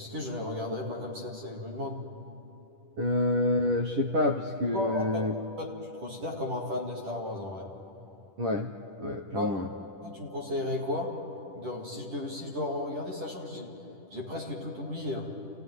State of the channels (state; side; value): late; left; 10 ms